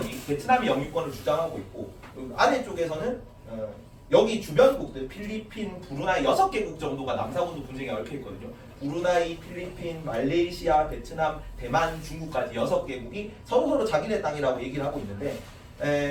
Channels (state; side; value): identical; both; correlation 1.00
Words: 영유권을 주장하고 있고 아래쪽에서는 여기 주변국들 필리핀, 브루나이 6개국 정도가 남사군도 분쟁에 얽혀 있거든요. 브루나이, 필리핀, 말레이시아, 베트남, 대만, 중국까지 6개국이 서로 자기네 땅이라고 얘기를 하고 있는데